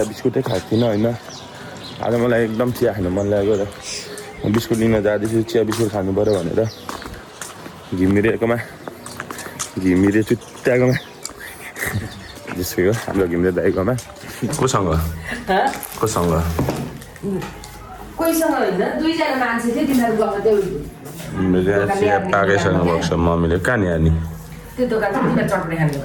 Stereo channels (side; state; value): both; identical; correlation 1.00